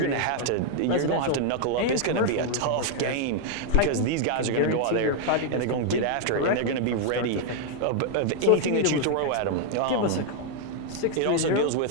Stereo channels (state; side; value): different; both; correlation 0.00